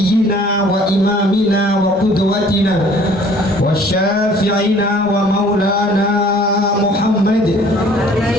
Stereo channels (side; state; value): both; normal; correlation 0.54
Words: wa imamina wa qudwatina wa syafi'ina wa maulana Muhammad